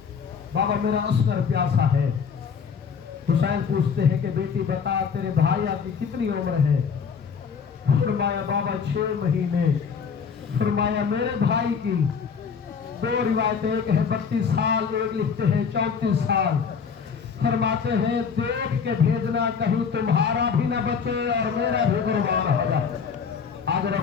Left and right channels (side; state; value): right; quieter; 6.3 dB